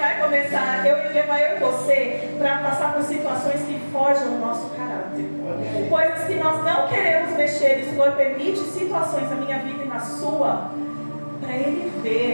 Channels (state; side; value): inverted; both; correlation -1.00